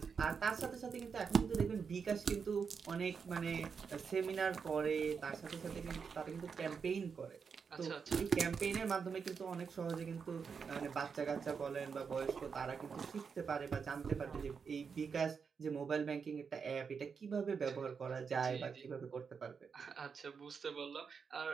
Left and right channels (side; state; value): left; quieter; 5.9 dB